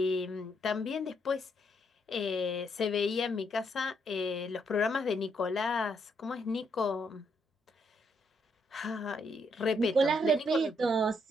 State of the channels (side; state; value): both; normal; correlation 0.75